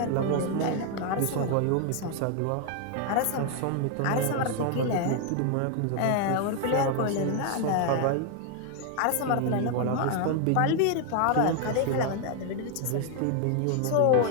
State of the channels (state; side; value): different; both; correlation 0.00